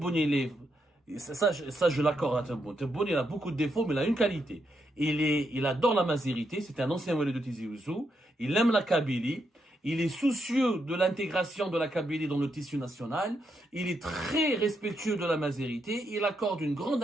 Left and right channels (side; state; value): both; normal; correlation 0.81